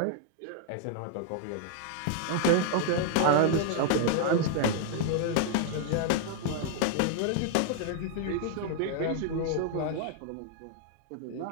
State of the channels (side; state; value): both; different; correlation 0.00